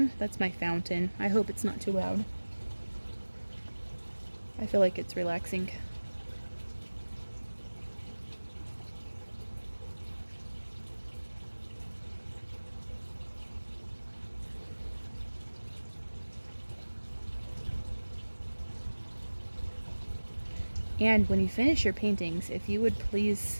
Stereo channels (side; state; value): both; inverted; correlation -1.00